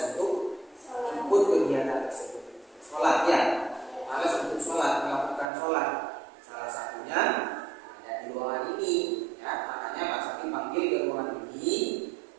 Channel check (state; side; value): drops out; left; at 5.5 s